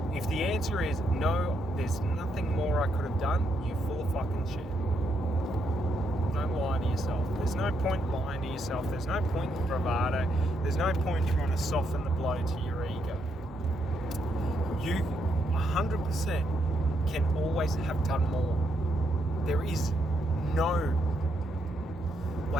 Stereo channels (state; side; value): normal; both; correlation 0.78